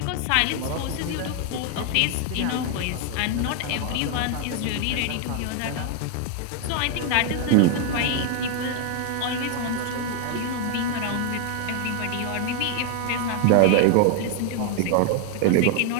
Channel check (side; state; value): both; different; correlation 0.01